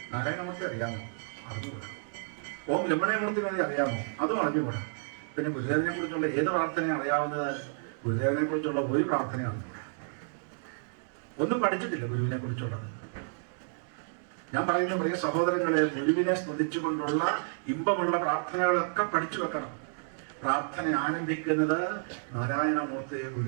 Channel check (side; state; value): left; silent; digital silence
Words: നാരായണമൂർത്തി അറിയാമോ? അറിഞ്ഞുകൂടാ. ഓം രമണയമൂർത്തി വേണ്ടി അറിയാമോ? അതും അറിഞ്ഞുകൂടാ. പിന്നെ ഗുരുദേവനെ കുറിച്ചുള്ള ഏത് പ്രാർത്ഥന അറിയാവുന്നത്? ഗുരുദേവനെ കുറിച്ചുള്ള ഒരു പ്രാർത്ഥന അറിഞ്ഞുകൂടാ. ഒന്നും പഠിച്ചിട്ടില്ല ഗുരുവിനെ കുറിച്ചുള്ളത്. ഞാൻ പറയുന്ന പ്രിയ സഹോദരങ്ങളെ, ഗുരുവിനെ സ്തുതിച്ചുകൊണ്ടുള്ള ഇമ്പമുള്ള പ്രാർത്ഥനകളൊക്കെ പഠിച്ചു വെക്കണം. പ്രാർത്ഥന ആരംഭിക്കുന്നത് നാരായണമൂർത്തി,